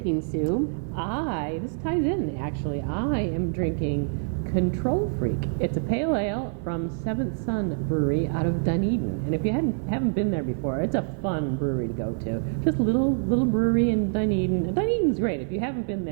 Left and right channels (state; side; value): silent; left; digital silence